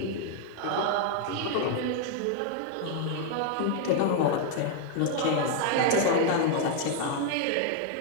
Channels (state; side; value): different; both; correlation 0.00